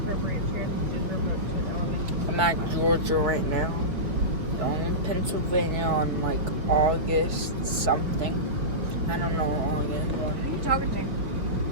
I'm at Georgia right now. Going in Pennsylvania on like August something. I don't know August. Who are you talking to?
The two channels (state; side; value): late; left; 4.9 ms